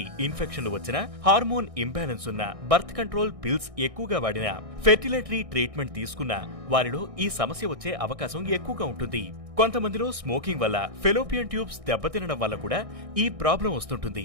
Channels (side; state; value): left; late; 1.6 ms